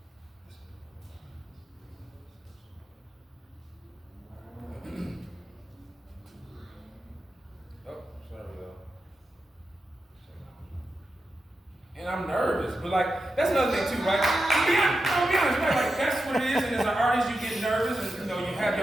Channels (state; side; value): normal; both; correlation 0.89